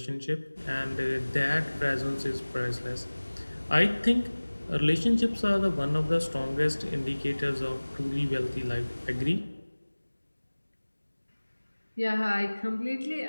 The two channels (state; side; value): inverted; both; correlation -1.00